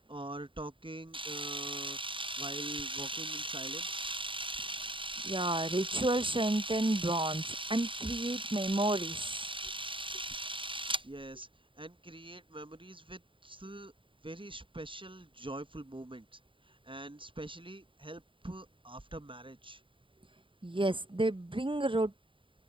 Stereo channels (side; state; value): left; late; 0.25 ms